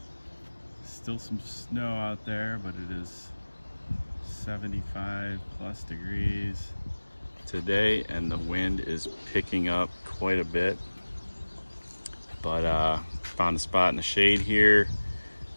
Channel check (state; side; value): inverted; both; correlation -1.00